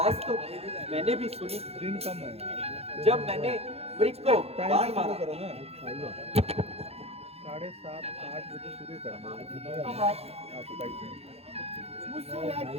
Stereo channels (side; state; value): left; late; 0.29 ms